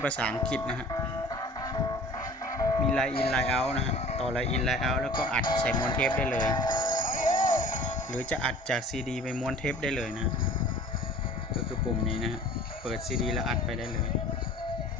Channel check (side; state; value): both; normal; correlation 0.45